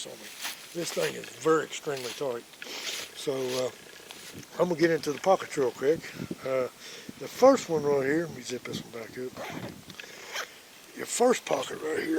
on me. This thing is very extremely tight. So I'm going to get into the pockets real quick. The first one right here, let me zip this one back up. Your first pocket right here,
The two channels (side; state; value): both; identical; correlation 1.00